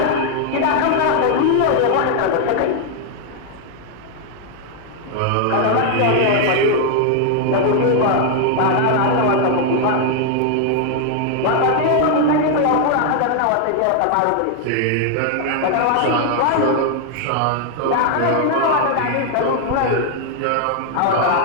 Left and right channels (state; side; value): different; both; correlation 0.00